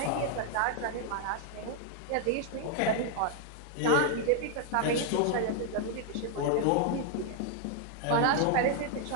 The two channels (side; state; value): both; different; correlation 0.00